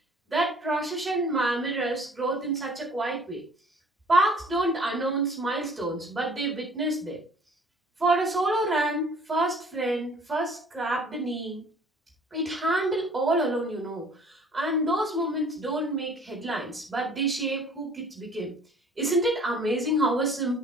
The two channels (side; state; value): both; normal; correlation 0.53